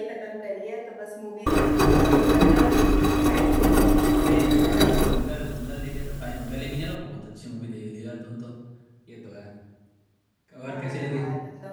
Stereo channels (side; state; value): both; identical; correlation 1.00